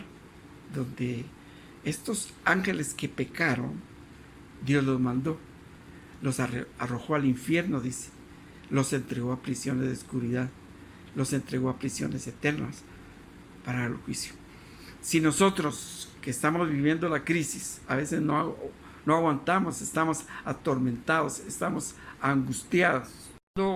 donde estos ángeles que pecaron, Dios los mandó, los arrojó al infierno, dice, los entregó a prisiones de oscuridad, los entregó a prisiones eternas para el juicio. Si nosotros que estamos viviendo la crisis, a veces no aguantamos, estamos atormentados, estamos angustiados.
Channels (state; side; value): identical; both; correlation 1.00